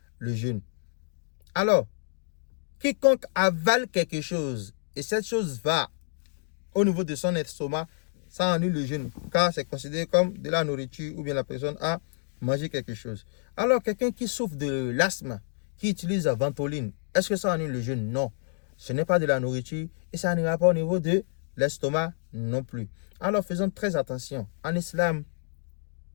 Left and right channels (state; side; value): silent; right; digital silence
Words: le jeûne. Alors, quiconque avale quelque chose et cette chose va au niveau de son estomac, ça annule le jeûne car c'est considéré comme de la nourriture ou bien la personne a mangé quelque chose. Alors, quelqu'un qui souffre de l'asthme, qui utilise la ventoline, est-ce que ça annule le jeûne? Non. Ce n'est pas de la nourriture et ça n'ira pas au niveau de l'estomac non plus. Alors, faisons très attention. En islam,